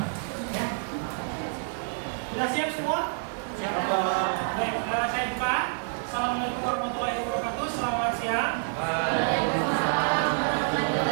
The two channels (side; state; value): left; silent; 60 dB below the other